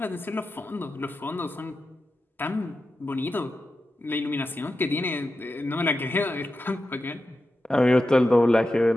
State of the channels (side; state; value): both; normal; correlation 0.91